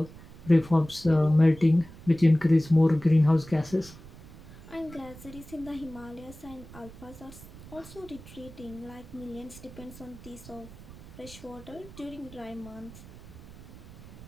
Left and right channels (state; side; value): noise; right; rumble, 17 dB below the sound